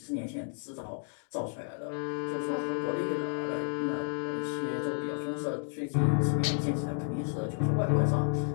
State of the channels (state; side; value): silent; right; 57 dB below the other